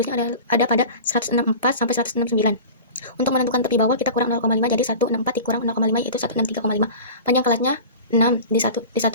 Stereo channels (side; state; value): both; inverted; correlation -0.35